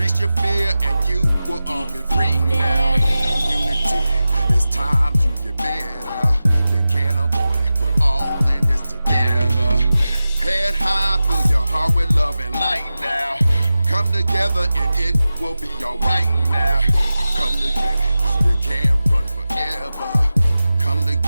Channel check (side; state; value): both; inverted; correlation -0.94